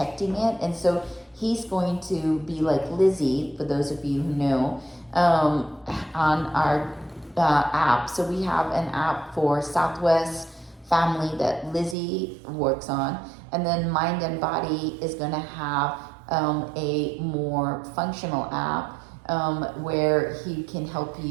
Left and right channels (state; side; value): drops out; left; at 12.0 s